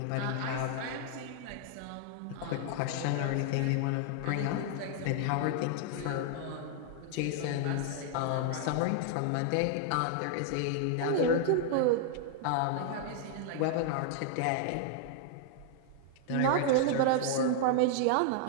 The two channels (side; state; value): both; different; correlation 0.00